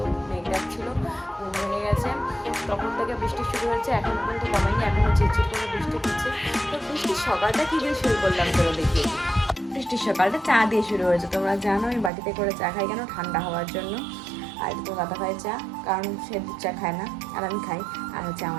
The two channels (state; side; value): drops out; left; at 12.1 s